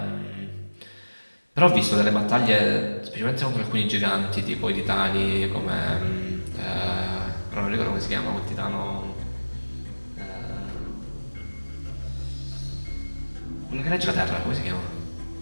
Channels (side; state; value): both; inverted; correlation -1.00